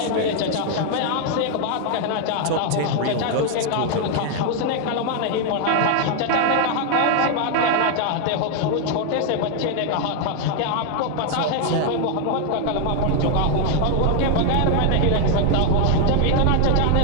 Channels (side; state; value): both; different; correlation 0.00